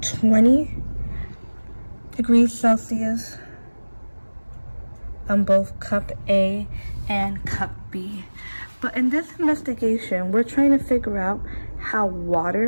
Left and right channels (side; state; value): both; inverted; correlation -1.00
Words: 20 degrees Celsius on both cup A and cup B. But in this investigation, we're trying to figure out how